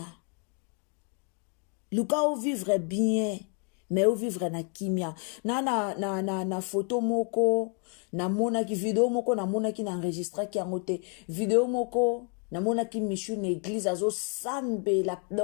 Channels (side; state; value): right; quieter; 39.2 dB